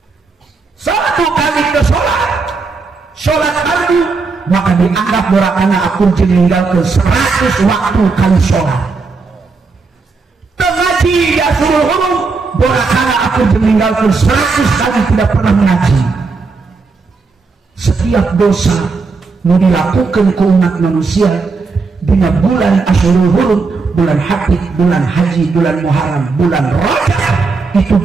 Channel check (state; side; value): quieter; left; 4.3 dB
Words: 1 kali ke sholat fardu maka dianggap dorakana aku meninggalkan 100 waktu kali sholat. Mengaji di Ashurul Hurum dorakana aku meninggalkan 100 kali tidak pernah mengaji. Setiap dosa mau dilakukan ke umat manusia di bulan Ashurul Hurum, bulan Hadid, bulan Haji, bulan Muharram, bulan Rajab itu